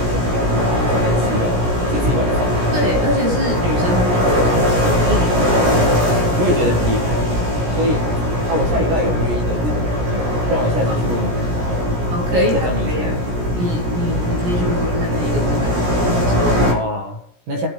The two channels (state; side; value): late; left; 17 ms